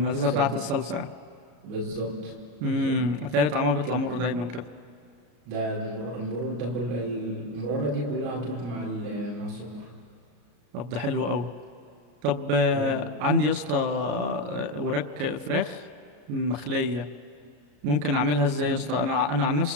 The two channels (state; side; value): late; left; 34 ms